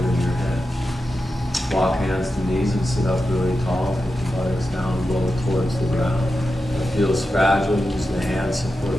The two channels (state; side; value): normal; both; correlation 0.90